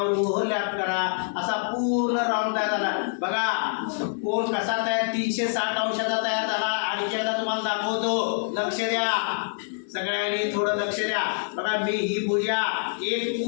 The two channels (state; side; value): silent; right; digital silence